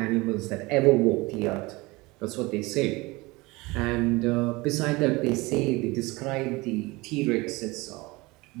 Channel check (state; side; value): quieter; left; 23.1 dB